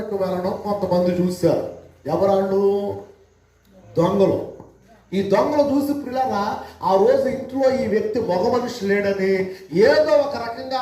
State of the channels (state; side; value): identical; both; correlation 1.00